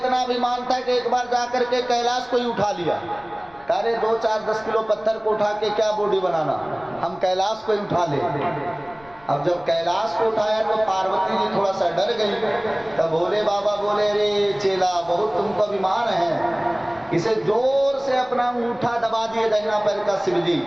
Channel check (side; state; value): left; noise; rumble, 27 dB below the sound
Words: अभिमान था कि एक बार जाकर के कैलाश को ही उठा लिया। अरे 2-4-10 किलो पत्थर को उठा के क्या बॉडी बनाना, हम कैलाश को ही उठा ले। अब जब कैलाश को उठाया तो पार्वती जी थोड़ा सा डर गई। तब भोले बाबा बोले, रे चेला, बहुत तुमको अभिमान है। इसे जोर से अपना अंगूठा दबा दिए दाहिना पैर का शिव जी,